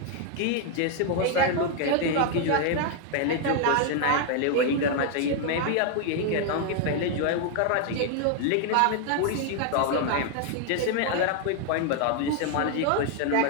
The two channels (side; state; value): both; different; correlation 0.00